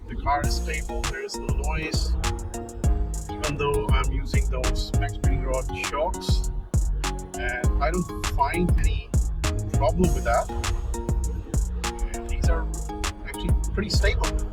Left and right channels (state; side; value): identical; both; correlation 1.00